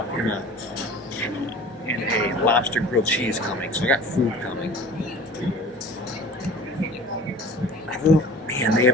and a lobster grilled cheese coming, so I got food coming. Man, they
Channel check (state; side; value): normal; both; correlation 0.41